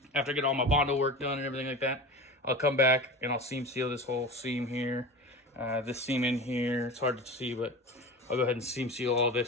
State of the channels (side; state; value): both; normal; correlation 0.30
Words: After I get all my Bondo work done and everything like that, I'll come back and I'll seam seal this whole seam here. This seam in here, it's hard to see, but I'll go ahead and seam seal all